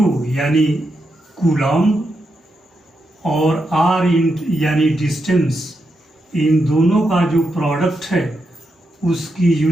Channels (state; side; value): normal; both; correlation 0.84